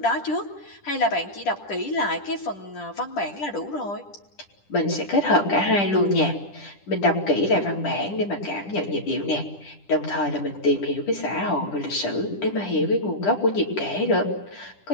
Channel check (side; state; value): right; late; 10 ms